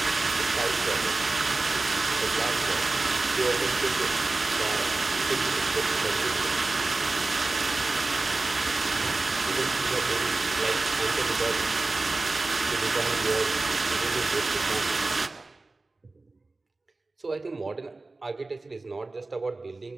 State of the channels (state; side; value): quieter; left; 3.3 dB